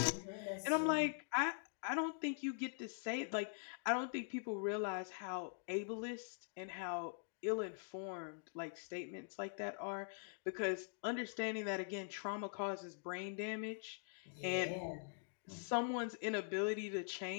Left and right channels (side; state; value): right; silent; digital silence